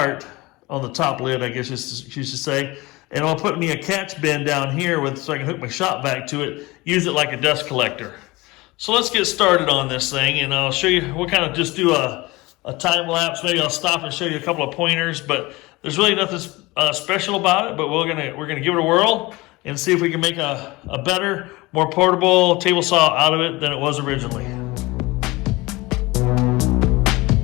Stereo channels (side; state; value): right; quieter; 22.0 dB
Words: on the top lid, I guess you should say. And I'll put me a catch bin down here so I can hook my shop vac to it, use it like a dust collector. So let's get started on this thing, and I'll show you, we'll kind of just do a time lapse. Maybe I'll stop and show you a couple of pointers, but there's really nothing special about it, but we're gonna give it a whirl and see if we can make a better, more portable table saw out of it than it was originally.